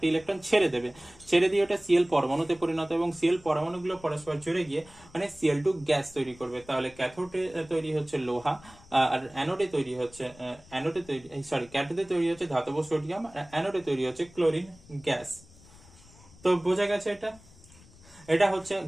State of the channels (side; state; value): left; noise; rumble, 24 dB below the sound